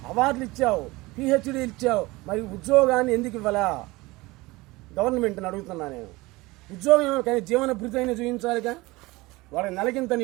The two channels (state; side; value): quieter; left; 21.6 dB